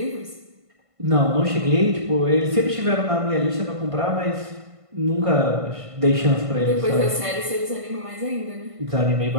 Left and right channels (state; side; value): late; left; 1.5 ms